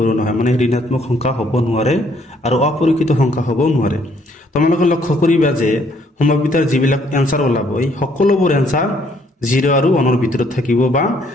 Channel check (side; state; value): both; normal; correlation 0.66